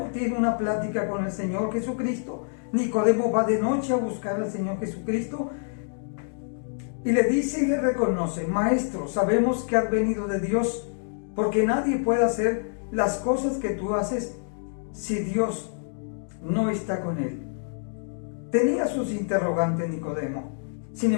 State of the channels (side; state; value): right; silent; digital silence